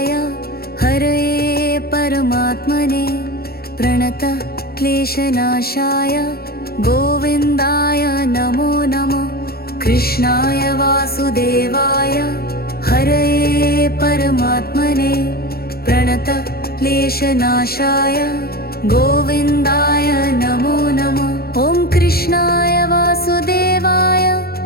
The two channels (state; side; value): late; right; 0.44 ms